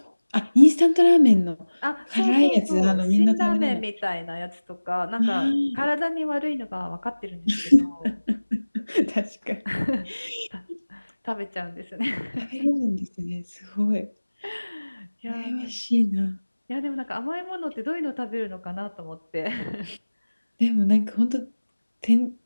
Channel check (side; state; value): both; inverted; correlation -1.00